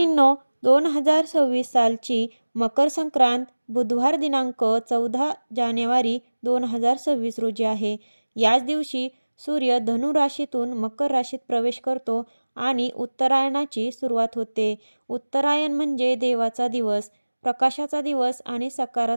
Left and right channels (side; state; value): both; inverted; correlation -1.00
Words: 2026 सालची मकर संक्रांत बुधवार दिनांक 14 जानेवारी 2026 रोजी आहे. याच दिवशी सूर्य धनु राशीतून मकर राशीत प्रवेश करतो आणि उत्तरायणाची सुरुवात होते. उत्तरायण म्हणजे देवाचा दिवस, प्रकाशाचा दिवस आणि